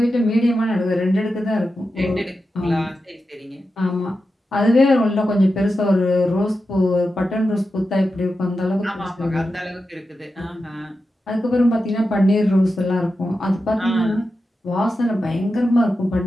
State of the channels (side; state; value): both; normal; correlation 0.90